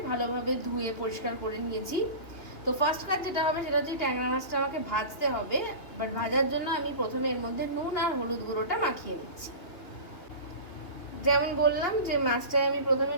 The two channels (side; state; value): right; late; 3.0 ms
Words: ভালোভাবে ধুয়ে পরিষ্কার করে নিয়েছি। তো ফার্স্ট কাজ যেটা হবে সেটা হচ্ছে ট্যাংরা মাছটা আমাকে ভাজতে হবে, বাট ভাজার জন্য আমি প্রথমে এর মধ্যে নুন আর হলুদ গুঁড়োটা মাখিয়ে নিচ্ছি। যেমন বললাম যে মাছটায় আমি প্রথমে